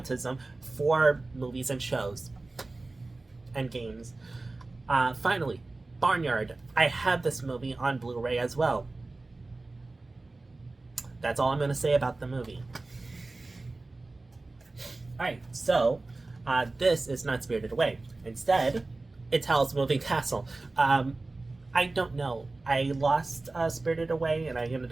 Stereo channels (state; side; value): quieter; left; 3.2 dB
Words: for movies and shows and games. Finally, Barnyard. I have this movie on Blu-ray as well. That's all I'm going to say about the movie. Alright, so this is not Spirited Away. Instead, it's Howl's Moving Castle. I don't know. I lost Spirited Away, and I